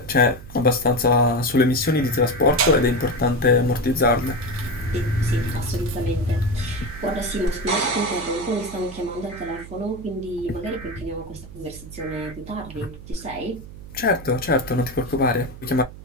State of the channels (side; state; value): right; noise; hum, 15 dB below the sound